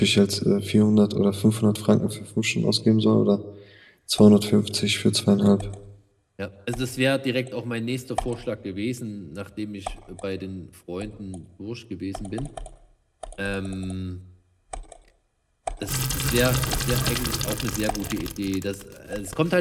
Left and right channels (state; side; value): identical; both; correlation 1.00